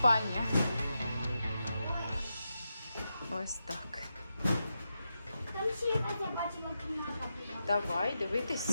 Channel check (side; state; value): both; inverted; correlation -0.87